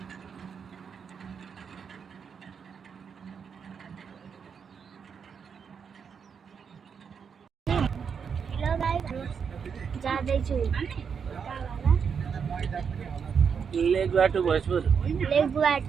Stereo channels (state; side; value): quieter; left; 6.6 dB